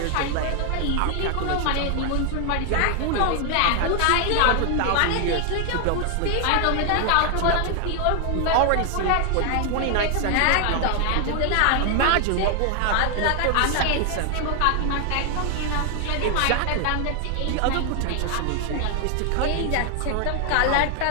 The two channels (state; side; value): different; both; correlation 0.00